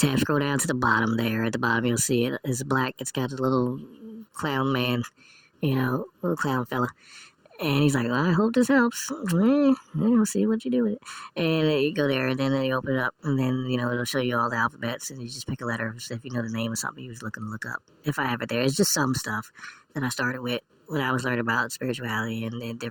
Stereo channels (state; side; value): identical; both; correlation 1.00